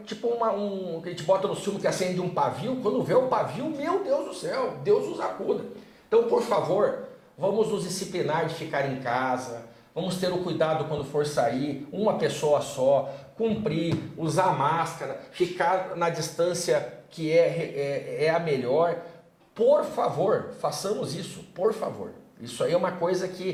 tipo que a gente bota no filme que acende um pavio, quando vê o pavio, meu Deus do céu, Deus nos acuda. Então, por favor, vamos nos disciplinar de ficar em casa, vamos ter o cuidado quando for sair, uma pessoa só, cumprir, usar máscara, ficar na distância que é a melhor. Por favor, façamos isso, por favor. Isso aí é uma coisa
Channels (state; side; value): identical; both; correlation 1.00